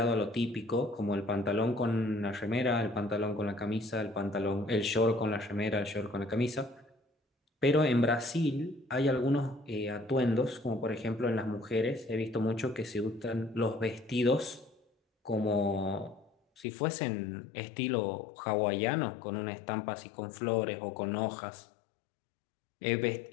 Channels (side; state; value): right; drops out; at 16.7 s